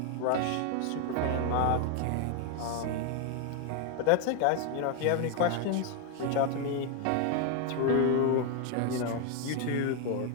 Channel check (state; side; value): different; both; correlation 0.00